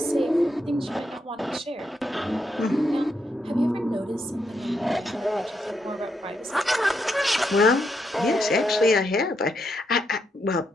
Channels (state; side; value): normal; both; correlation 0.80